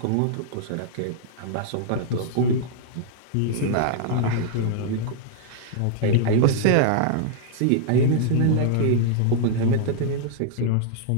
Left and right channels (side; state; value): both; different; correlation -0.01